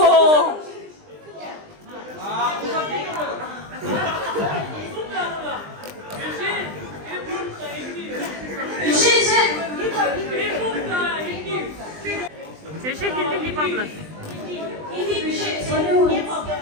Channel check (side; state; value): left; late; 20 ms